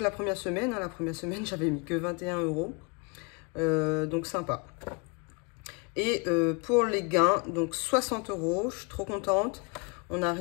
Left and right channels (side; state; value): right; quieter; 31.7 dB